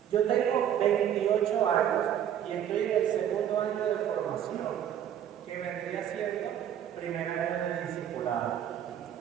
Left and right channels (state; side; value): quieter; left; 10.0 dB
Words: Yo tengo 28 años y estoy en el segundo año de formación, que vendría siendo primer año de discipulado.